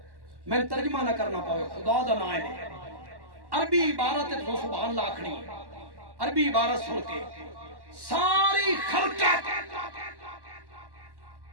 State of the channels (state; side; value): late; left; 1.1 ms